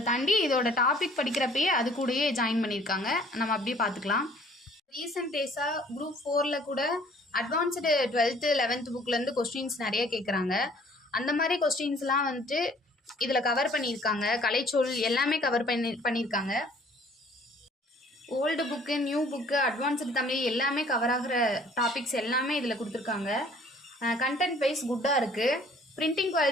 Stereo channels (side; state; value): both; normal; correlation 0.56